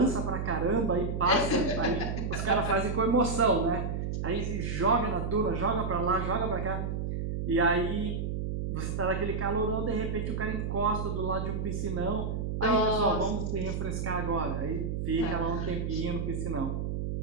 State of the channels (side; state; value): right; noise; hum, 2 dB below the sound